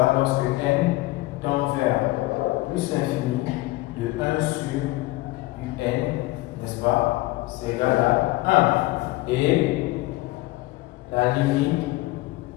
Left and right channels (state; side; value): quieter; right; 19.8 dB